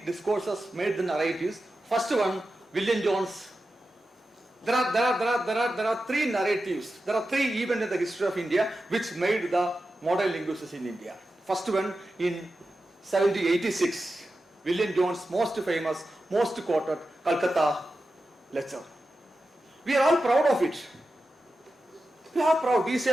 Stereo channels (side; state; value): both; normal; correlation 0.91